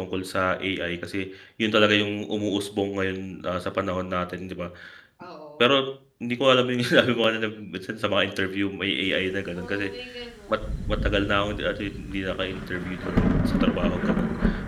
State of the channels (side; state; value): both; identical; correlation 1.00